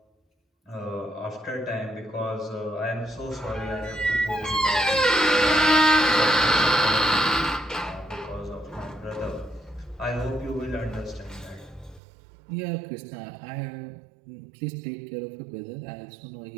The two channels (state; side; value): drops out; left; at 12.0 s